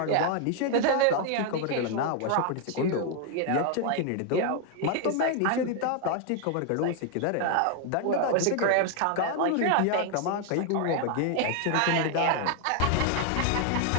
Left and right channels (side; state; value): both; different; correlation 0.00